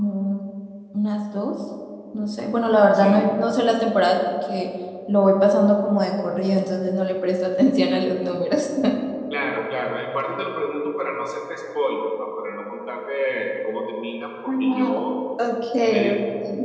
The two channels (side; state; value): both; identical; correlation 1.00